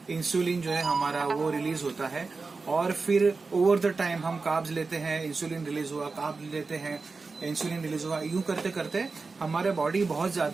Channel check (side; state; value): left; quieter; 4.2 dB